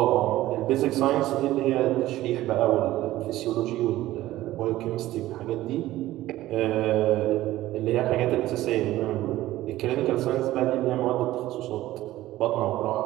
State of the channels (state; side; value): quieter; left; 15.6 dB